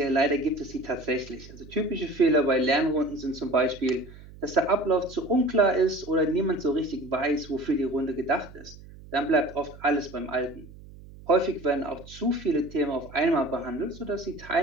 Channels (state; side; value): noise; right; hum, 19 dB below the sound